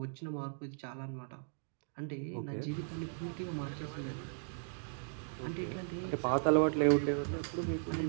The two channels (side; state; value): left; silent; digital silence